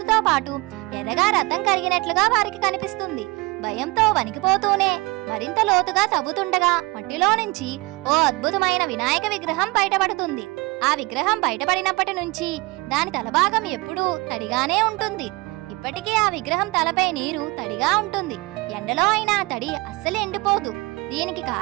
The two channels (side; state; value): left; quieter; 24.0 dB